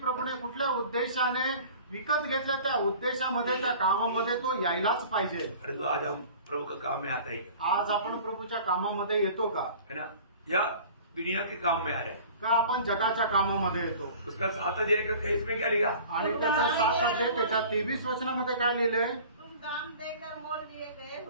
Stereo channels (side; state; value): both; inverted; correlation -0.44